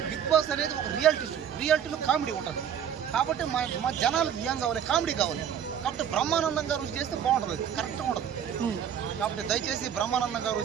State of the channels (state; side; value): quieter; left; 8.9 dB